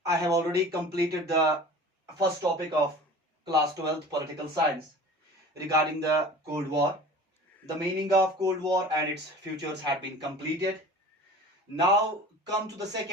I have already completed the first topic of class 12th political science regarding the Cold War. The meaning of Cold War and its futures had been completed. Now come to the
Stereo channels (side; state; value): both; normal; correlation 0.41